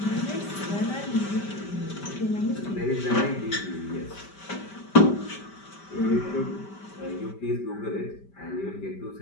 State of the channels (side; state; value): right; late; 5.1 ms